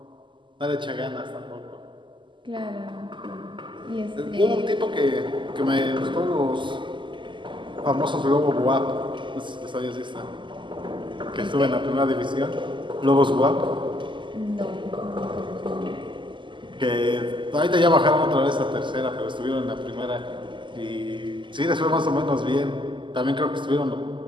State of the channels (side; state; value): left; late; 0.24 ms